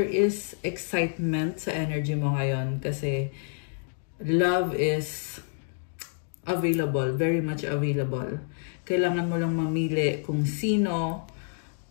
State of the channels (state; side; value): silent; right; digital silence